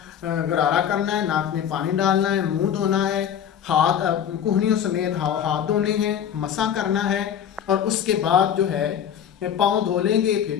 गरारा करना है, नाक में पानी डालना है, मुंह धोना है, हाथ कोहनियों समेत हाथ धोने हैं, मसा करना है, और उसके बाद जो है पाँव धो लेंगे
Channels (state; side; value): quieter; right; 9.1 dB